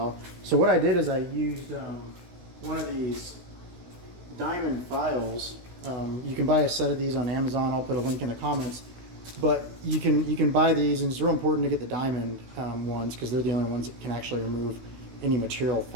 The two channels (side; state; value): left; late; 16 ms